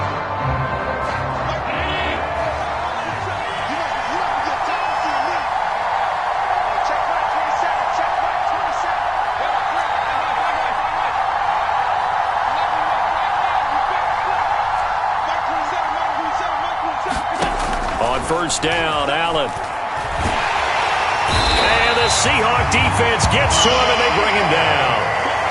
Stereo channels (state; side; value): identical; both; correlation 1.00